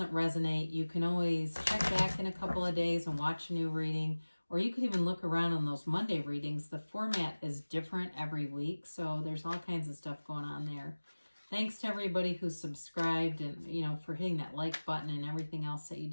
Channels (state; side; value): inverted; both; correlation -1.00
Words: resonate, you can always check back in a couple of days and watch a new reading. Or you could even look around on those Monday readings. The format is different every week, so there's all kinds of stuff going on there. Thanks to everybody who subscribed and, for hitting that like button and everything else that you